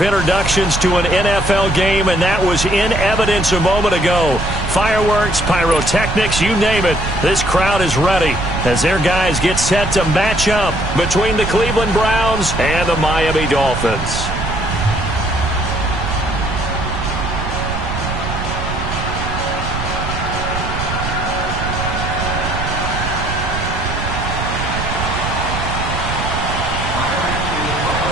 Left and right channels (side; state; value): right; noise; rumble, 5 dB below the sound